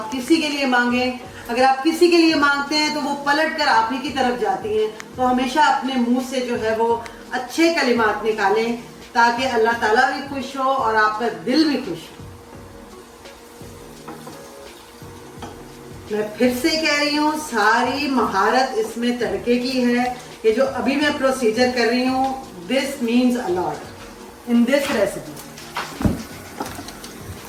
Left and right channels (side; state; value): both; identical; correlation 1.00